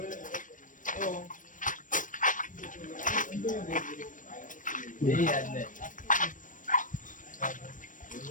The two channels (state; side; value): late; right; 0.38 ms